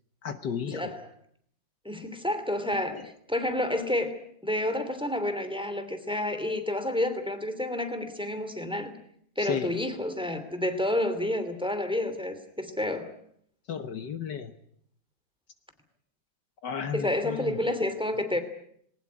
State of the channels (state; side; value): normal; both; correlation 0.47